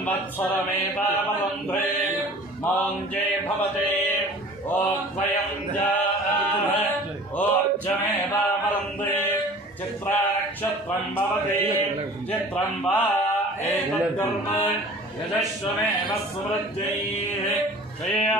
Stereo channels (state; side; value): normal; both; correlation 0.44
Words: मौञ्जे भवते ओद्वयं ओज्जमेवावरुन्धे चित्रानक्षत्रं भवते चित्रं वा एतद्कर्म यजस्वमेव सुवृद्ध्यैः